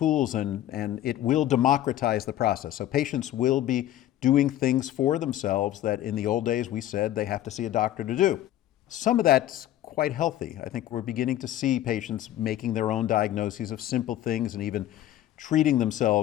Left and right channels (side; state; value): right; quieter; 13.0 dB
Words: and it will democratize the process. So patients will be doing things for themselves that in the old days we said they have to see a doctor to do. Some of that's quite healthy. I think we're beginning to see patients making their own diagnoses of simple things and even treating